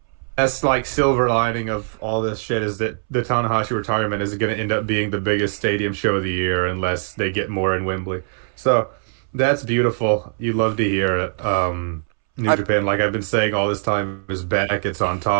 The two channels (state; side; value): silent; left; 65 dB below the other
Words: That's like silver lining of all this shit is that the Tanahashi retirement is going to end up being the biggest stadium show of the year unless they get more in Wembley. So that's beautiful. You love to hear it. New Japan, like I've been saying all this time, is back. It's on